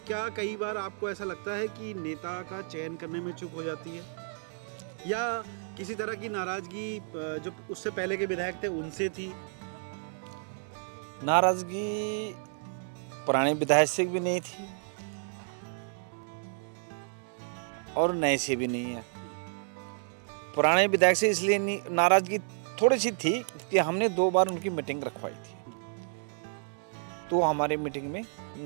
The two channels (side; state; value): left; silent; digital silence